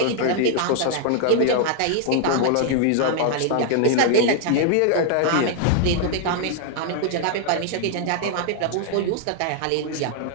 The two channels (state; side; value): different; both; correlation 0.00